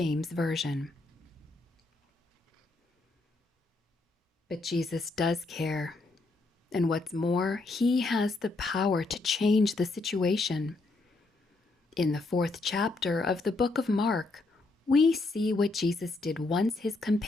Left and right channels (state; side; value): quieter; right; 3.3 dB